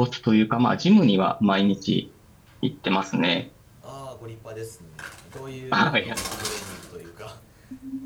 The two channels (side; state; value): both; identical; correlation 1.00